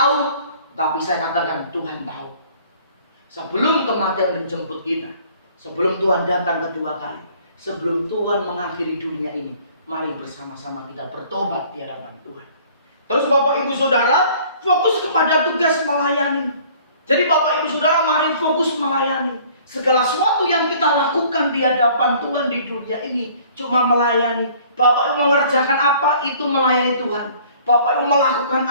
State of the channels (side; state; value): both; inverted; correlation -0.54